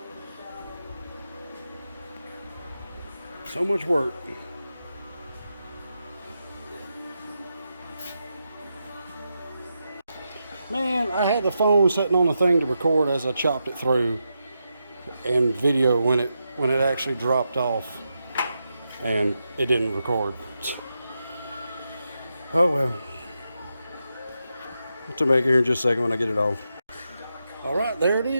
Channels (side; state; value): both; inverted; correlation -0.86